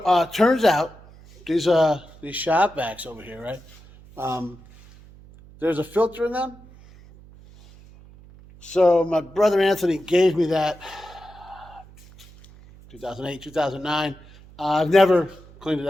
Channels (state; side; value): noise; right; hum, 22 dB below the sound